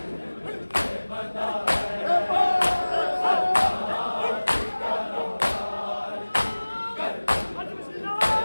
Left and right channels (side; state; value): both; inverted; correlation -1.00